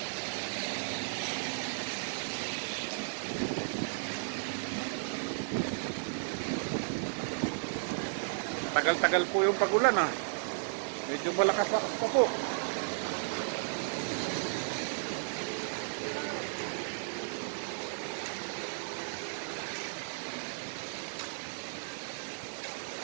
Tagal-tagal po yung pagulan ah. Medyo malakas-lakas pa po.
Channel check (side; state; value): left; silent; digital silence